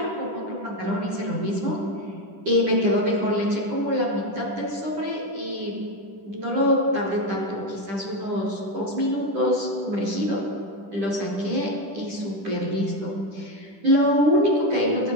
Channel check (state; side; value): late; left; 10 ms